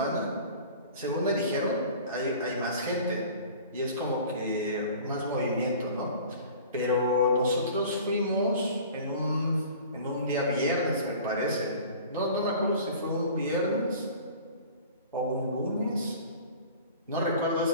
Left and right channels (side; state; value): both; inverted; correlation -0.43